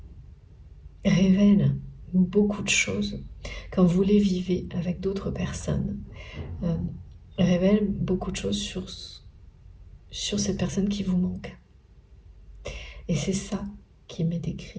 révèlent beaucoup de choses. Quand vous les vivez avec d'autres personnes, révèlent beaucoup de choses sur cette personne qui vous manque. Et c'est ça qui m'est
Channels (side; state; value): both; identical; correlation 1.00